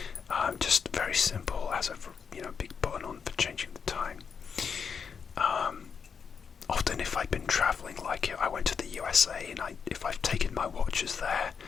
Just very simple, has a big button on for changing the time. Often if I've been travelling, like I went to the USA, and if I've taken my watches there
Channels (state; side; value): quieter; right; 6.3 dB